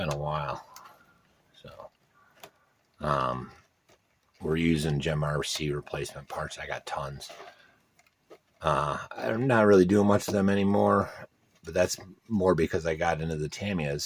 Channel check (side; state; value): both; identical; correlation 1.00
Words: a while. So we're using Gem RC replacement parts. I got tons. I'm not really doing much of them anymore, but that's more because I got into the TAMIYAs,